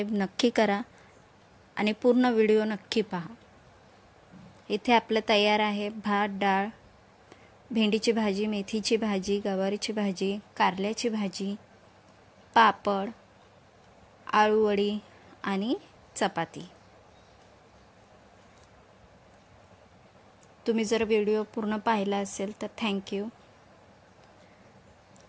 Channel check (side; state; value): both; identical; correlation 1.00